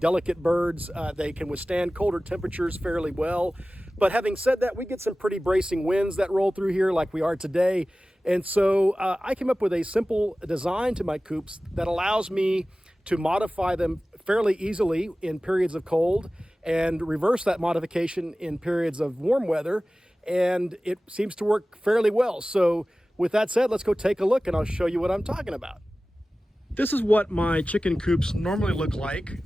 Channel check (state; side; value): normal; both; correlation 0.97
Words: birds. They can withstand colder temperatures fairly well. But having said that, we get some pretty bracing winds that roll through here like we are today. And so I came up with a simple design to my coops that allows me to modify them fairly easily in periods of cold and reverse that modification in periods of warm weather. And it seems to work fairly well. So with that said, let's go take a look and I'll show you what I'm talking about. This is what my chicken coops normally look like.